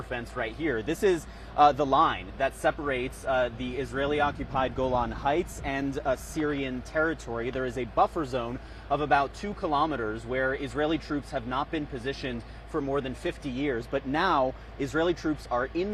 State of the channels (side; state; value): both; identical; correlation 1.00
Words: fence right here. This is the line that separates the Israeli-occupied Golan Heights and Syrian territory. There is a buffer zone of about 2 kilometers where Israeli troops have not been positioned for more than 50 years. But now Israeli troops are